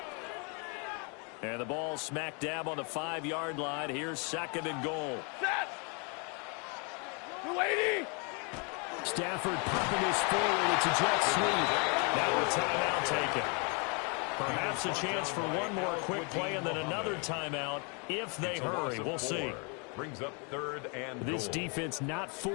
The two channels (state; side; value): quieter; right; 34.8 dB